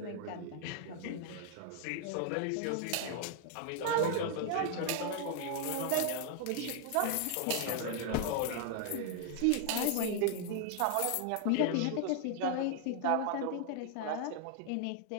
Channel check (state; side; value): different; both; correlation 0.00